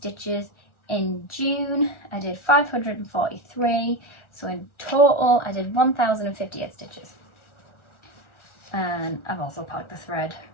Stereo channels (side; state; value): right; late; 1.4 ms